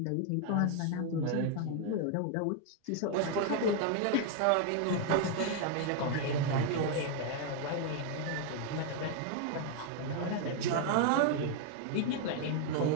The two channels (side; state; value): both; different; correlation 0.00